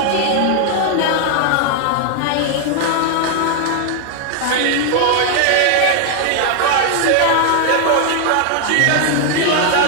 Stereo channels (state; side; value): different; both; correlation 0.00